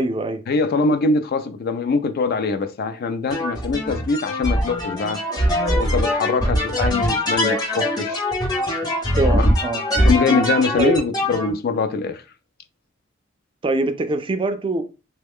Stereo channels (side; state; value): both; normal; correlation 0.48